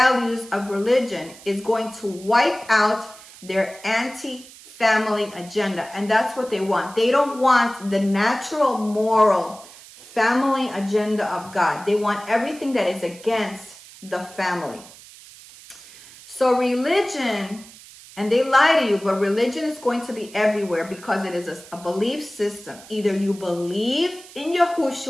of religion is going to wipe out their anti-family agenda. And that's what they want. They don't want the natural, moral family agenda of God. They want everything that is against the family. So religion, and they lie to you, but religion is going to be everywhere because it is a belief system. Either you believe in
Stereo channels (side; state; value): right; noise; hiss, 20 dB below the sound